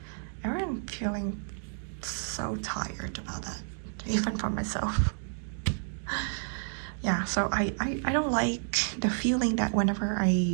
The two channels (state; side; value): silent; left; 57 dB below the other